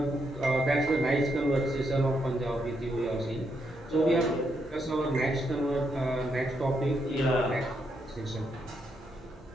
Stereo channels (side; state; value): both; normal; correlation 0.79